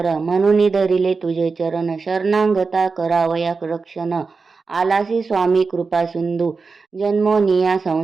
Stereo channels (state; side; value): quieter; left; 4.5 dB